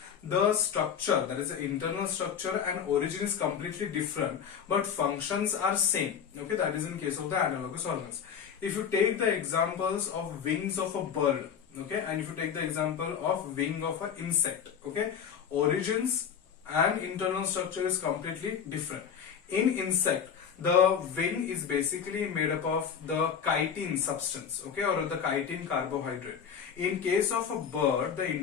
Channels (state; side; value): quieter; right; 7.7 dB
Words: the structure, that is the internal structure and origin is completely different but functions are same, okay, that is in case of the analogous organs. If you take the examples of wings of a bird, okay, and if you take the example of wing of an insect, okay, origins and internal structure is completely different. In insect, the wing is basically made up of the chitin substance, okay, or the chitin carbohydrate. In case of a bird, the